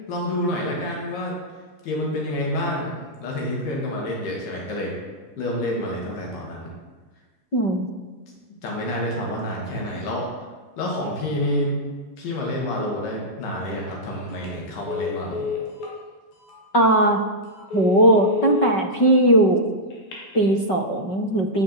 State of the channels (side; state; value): right; late; 5.3 ms